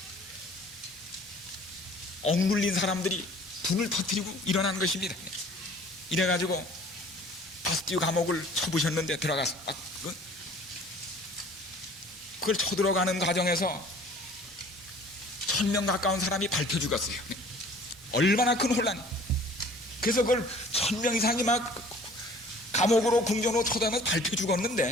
억눌린 사람들이 분을 터뜨리고 일어난 것입니다. 이래가지고 바스티유 감옥을 쳐부셨는데, 들어가서 그걸 쳐들어가는 과정에서 1000명 가까운 사람이 밟혀 죽었어요. 얼마나 큰 혼란이. 그래서 그걸 1000명 이상이 막 감옥으로 궁전으로 쳐다면서 밟혀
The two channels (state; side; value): normal; both; correlation 0.50